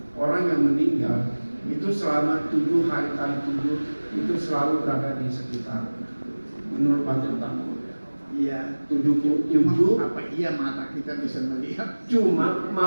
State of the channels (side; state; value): both; inverted; correlation -1.00